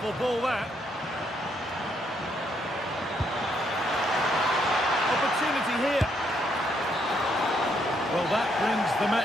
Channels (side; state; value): both; normal; correlation 0.74